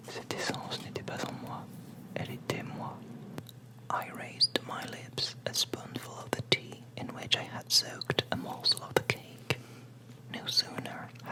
cette essence n'était pas en moi, elle était moi. I raised to my lips a spoonful of the tea in which I had soaked a morsel of the cake. No sooner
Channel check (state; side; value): identical; both; correlation 1.00